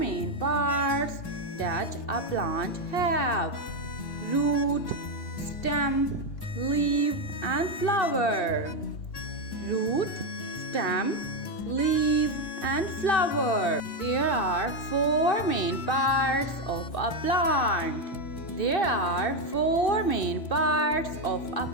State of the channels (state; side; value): late; right; 2.9 ms